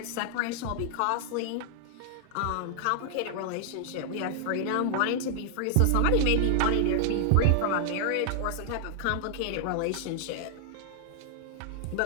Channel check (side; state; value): both; different; correlation 0.00